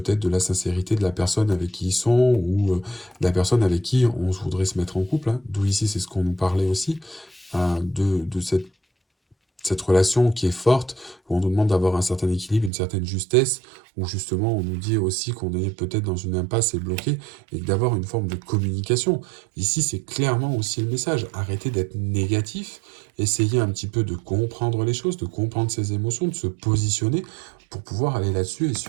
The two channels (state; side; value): drops out; left; at 12.7 s